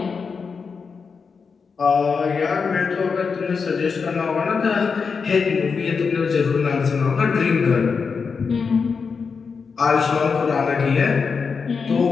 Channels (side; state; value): right; quieter; 5.4 dB